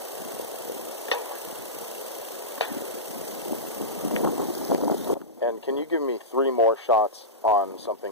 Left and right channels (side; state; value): both; normal; correlation -0.14